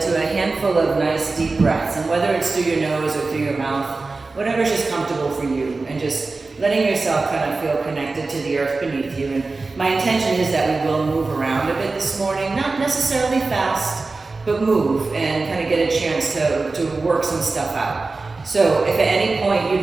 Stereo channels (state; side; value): quieter; left; 3.7 dB